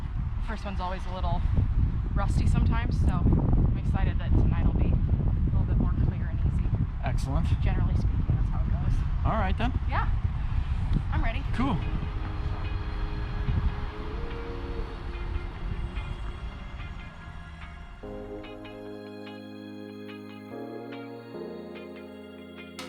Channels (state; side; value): identical; both; correlation 1.00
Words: the first one's always a little rusty sometimes, so I'm excited that tonight will be a little bit more clear and easy. Excellent. Generally speaking, that's how it goes. All right then. Yeah, I'm ready. Cool.